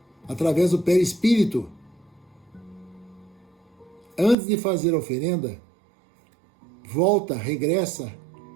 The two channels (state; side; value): drops out; left; at 4.4 s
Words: através do perispírito. Antes de fazer a oferenda, volta, regressa